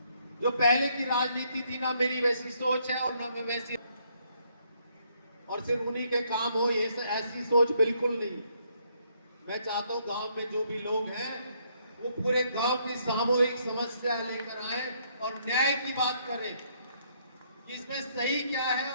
जो पहले की राजनीति थी ना, मेरी वैसी सोच है और ना मैं वैसी, और सिर्फ उन्हीं के काम हो ये ऐसी सोच बिल्कुल नहीं। मैं चाहता हूं गांव में जो भी लोग हैं वो पूरे गांव की सामूहिक समस्या लेकर आए और न्याय की बात करें कि इसमें सही क्या है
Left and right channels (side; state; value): both; inverted; correlation -0.71